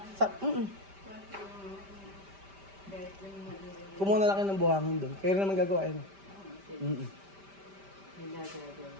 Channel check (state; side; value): late; left; 5.1 ms